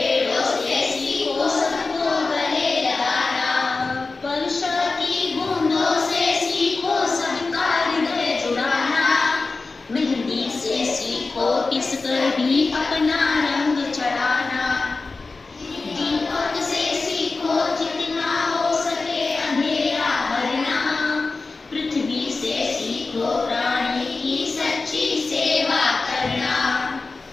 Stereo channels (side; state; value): right; quieter; 3.8 dB